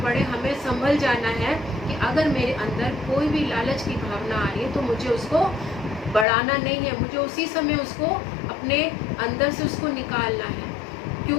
पड़े, हमें संभल जाना है कि अगर मेरे अंदर कोई भी लालच की भावना आ रही है तो मुझे उसको बढ़ाना नहीं है, मुझे उसी समय उसको अपने अंदर से उसको निकालना है।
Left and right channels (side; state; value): right; drops out; at 6.2 s